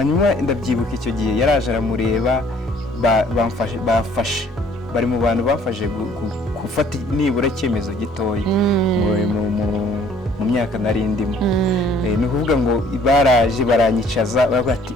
ndabyibuka icyo gihe yaraje aramureba, bari mu bantu bafashe gufata nibura icyemezo gitoya mu myaka nari ndimo. Ni ukuvuga ngo baraje baranyicaza baravuga ati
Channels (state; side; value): normal; both; correlation 0.58